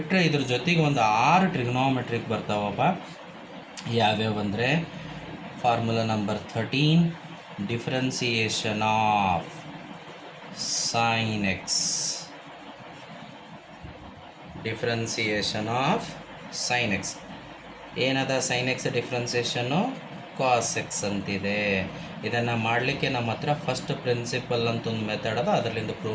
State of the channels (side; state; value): both; identical; correlation 1.00